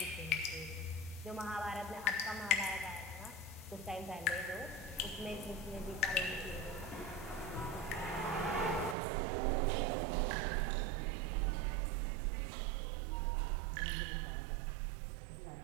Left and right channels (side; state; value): left; drops out; at 9.0 s